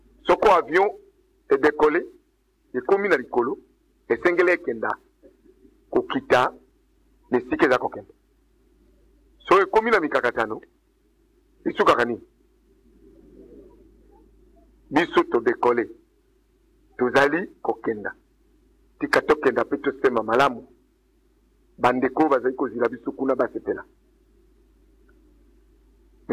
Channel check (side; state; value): both; identical; correlation 1.00